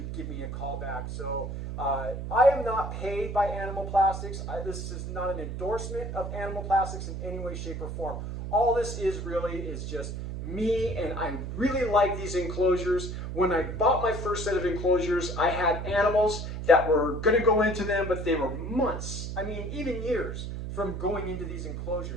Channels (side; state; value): right; noise; hum, 6 dB below the sound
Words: give me a call back. So I am not paid by Animal Plastics. This is not an endorsement of Animal Plastics in any way, shape, or form. All this is really is just me, and I really like these enclosures. When I bought my first set of enclosures, I had animals that were going to go into them, but they were months, I mean even years from going into these